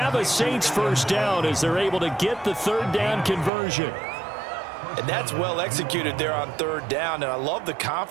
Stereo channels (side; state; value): left; drops out; at 3.5 s